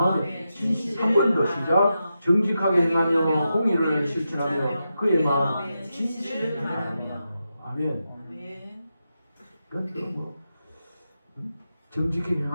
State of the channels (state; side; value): inverted; both; correlation -0.88